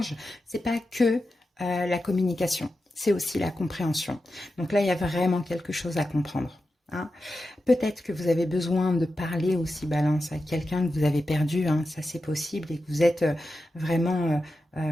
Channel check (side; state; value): both; normal; correlation 0.90